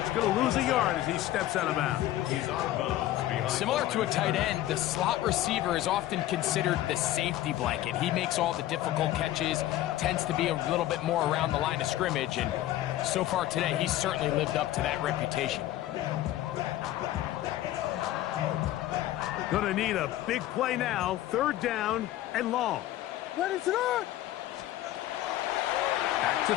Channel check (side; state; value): right; quieter; 14.2 dB